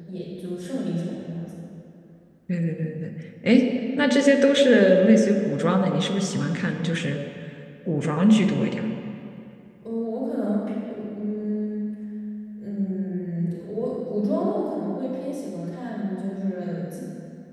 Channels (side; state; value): both; identical; correlation 1.00